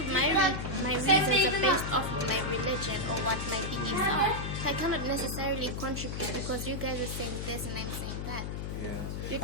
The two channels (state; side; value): noise; left; hum, 4 dB below the sound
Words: my reasons are based off of my religion or what my beliefs are. So I cannot necessarily contribute because you guys are saying this and I'm saying that. Yeah.